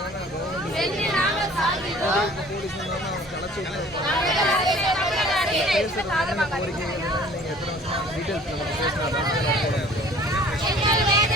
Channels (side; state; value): both; normal; correlation 0.51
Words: வென்று நாங்கள் சாகின்றோம். எங்கள்